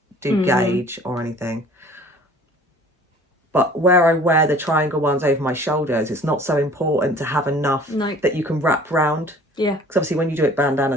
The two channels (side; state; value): both; normal; correlation 0.49